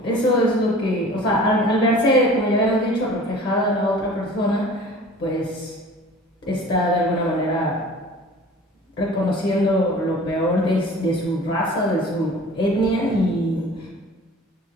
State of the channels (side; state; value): both; normal; correlation 0.44